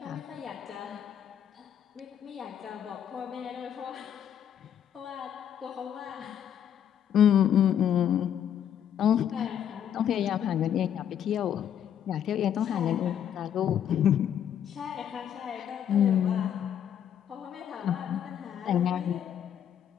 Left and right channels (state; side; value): quieter; right; 9.3 dB